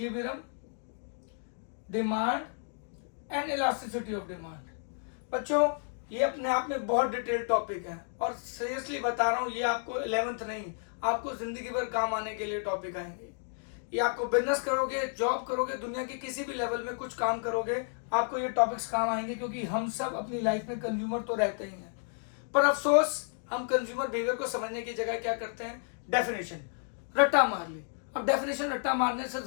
demand and elasticity of demand. बच्चों ये अपने आप में बहुत डिटेल टॉपिक है, और सीरियसली बता रहा हूँ ये आपको 11th नहीं, आपको जिंदगी भर काम आने के लिए टॉपिक आएंगे। ये आपको बिजनेस करोगे, जॉब करोगे, दुनिया के किसी भी लेवल में कुछ काम करोगे, आपको ये टॉपिक्स काम आएंगे, क्योंकि हम सब अपनी लाइफ में कंज्यूमर तो रहते ही हैं। पर अफसोस हम कंज्यूमर बिहेवियर को समझने की जगह क्या करते हैं, डेफिनेशन रट्टा मार ली। अब डेफिनेशन रट्टा मारने से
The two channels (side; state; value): right; silent; 57 dB below the other